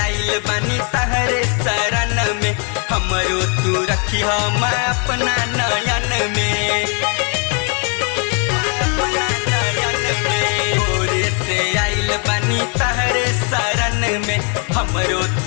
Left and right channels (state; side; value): quieter; right; 38.8 dB